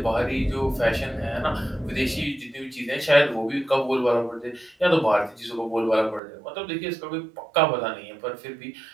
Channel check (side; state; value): left; drops out; at 6.2 s